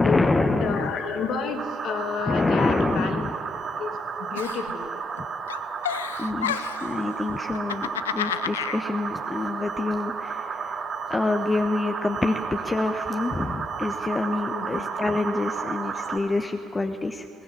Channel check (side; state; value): both; normal; correlation 0.78